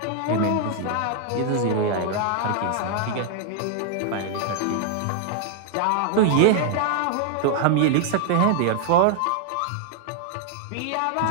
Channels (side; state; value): both; different; correlation 0.00